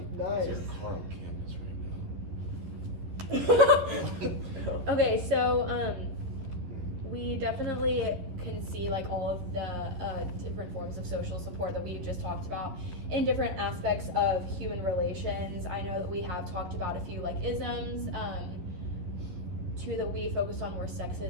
Nice. Carl Canvas right okay, so we definitely can see like all of the different forms of social support that we've just talked about in different aspects of human relations. I know that we have talked about a few like isms. Two that we focused on were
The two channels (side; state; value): left; late; 11 ms